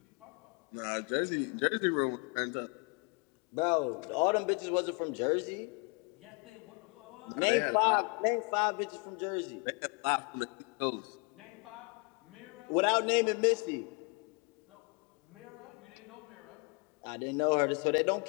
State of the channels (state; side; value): quieter; right; 33.6 dB